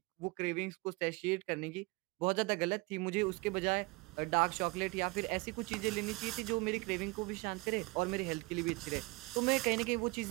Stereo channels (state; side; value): quieter; left; 25.3 dB